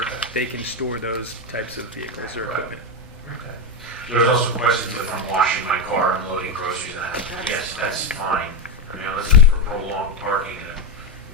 they can store those types of vehicles or equipment. Okay. There's also questions if I'm washing my car and loading groceries and that. Yes, that's fine. I mean, unless it's for prolonged parking and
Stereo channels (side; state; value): both; normal; correlation 0.09